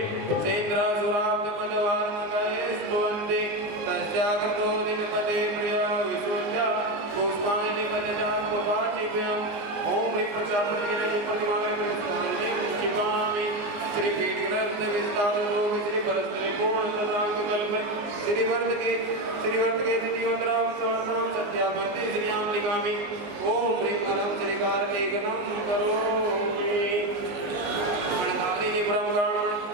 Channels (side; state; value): left; late; 19 ms